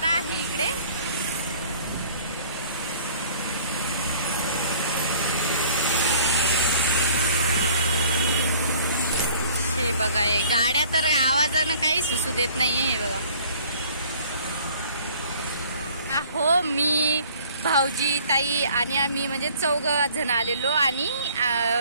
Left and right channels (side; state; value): both; inverted; correlation -0.53